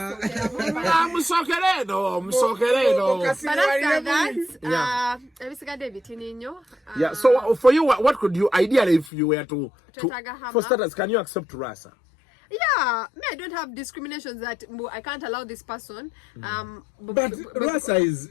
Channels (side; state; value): right; drops out; at 9.1 s